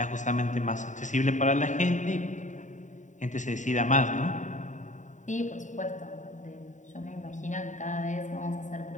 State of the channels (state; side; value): late; right; 0.36 ms